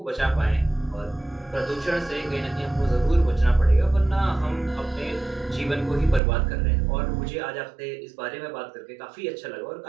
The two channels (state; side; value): drops out; left; at 6.2 s